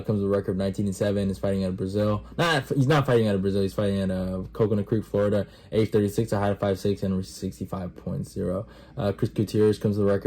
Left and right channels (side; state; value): both; identical; correlation 1.00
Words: with a record of 19-7. Is fighting out of Brazil. He's not fighting out of Brazil. He's fighting out of Coconut Creek, Florida. Age 36, a height of 5'6", and 65.0. Chris Gutierrez comes with a